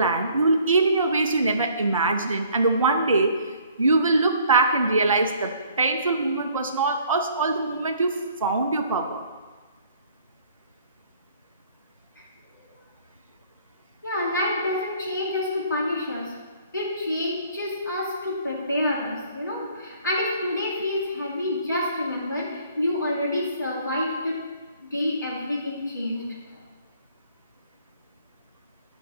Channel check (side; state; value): both; inverted; correlation -0.58